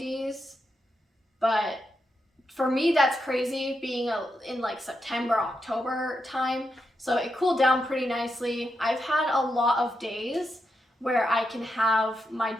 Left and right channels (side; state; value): both; normal; correlation 0.85